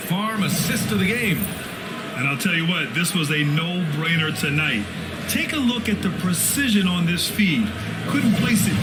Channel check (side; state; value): both; identical; correlation 1.00